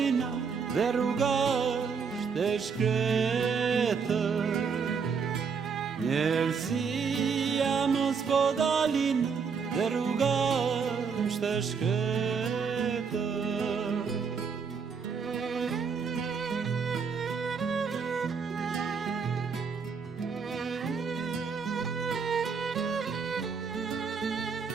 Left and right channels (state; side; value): quieter; left; 5.8 dB